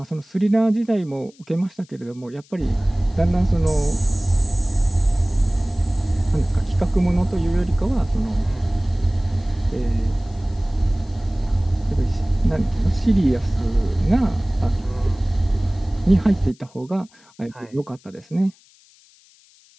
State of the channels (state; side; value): noise; left; hiss, 29 dB below the sound